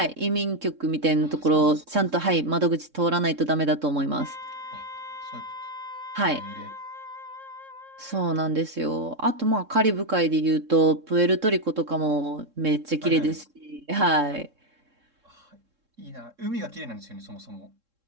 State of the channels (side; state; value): left; late; 3.7 ms